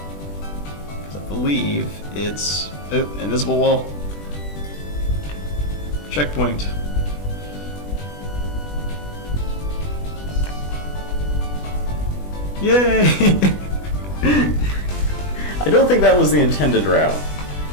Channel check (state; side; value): late; right; 20 ms